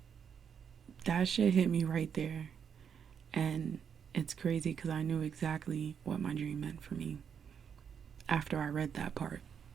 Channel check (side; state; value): left; quieter; 7.4 dB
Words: that shit hit me right there. And it's crazy because I knew exactly what my dream meant for me after I read that part.